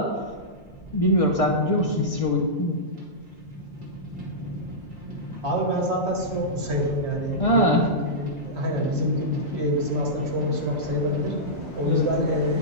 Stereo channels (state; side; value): normal; both; correlation -0.13